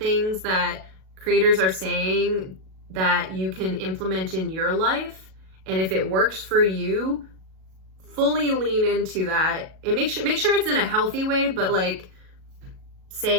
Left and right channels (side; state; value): left; late; 37 ms